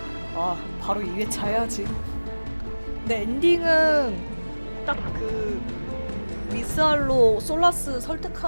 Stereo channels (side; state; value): both; inverted; correlation -1.00